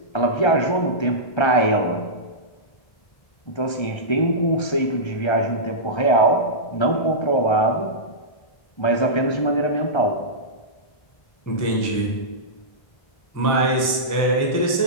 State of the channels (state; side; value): late; right; 1.3 ms